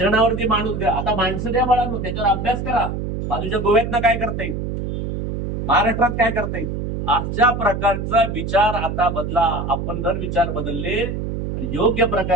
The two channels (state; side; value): noise; right; hum, 4 dB below the sound